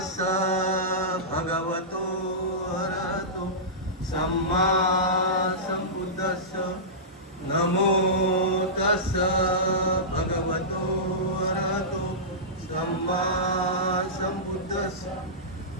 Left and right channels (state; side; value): normal; both; correlation -0.17